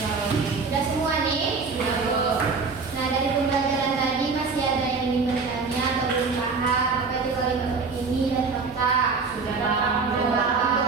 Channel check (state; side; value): quieter; left; 4.6 dB